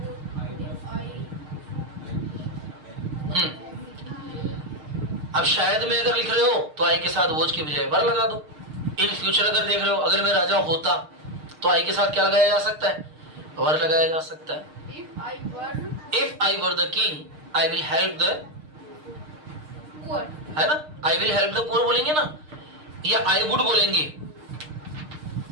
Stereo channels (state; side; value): late; left; 6.5 ms